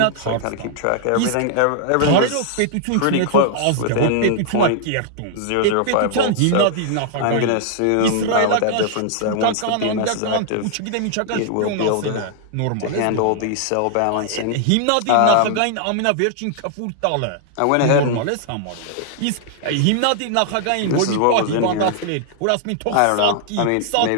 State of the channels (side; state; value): both; different; correlation -0.01